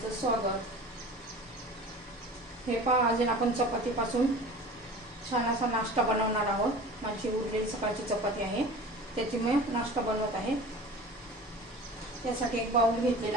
स्वागत. हे पहा, आज आपण चपातीपासून छान असा नाश्ता बनवणार आहोत. माझी उरलेली सकाळची चपाती आहे, त्याची मी नाश्ता बनवत आहे. त्यासाठी एक बाउल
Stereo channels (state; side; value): normal; both; correlation 0.39